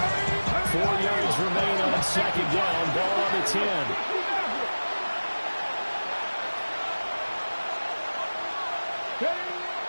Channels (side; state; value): both; inverted; correlation -1.00